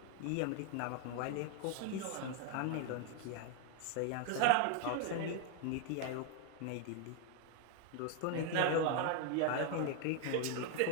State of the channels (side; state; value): both; different; correlation 0.01